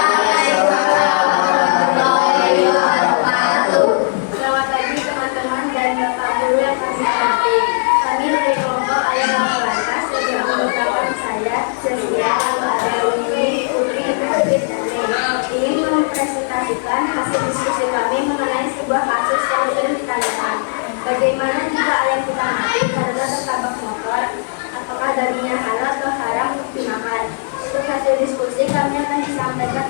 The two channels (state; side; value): silent; right; 62 dB below the other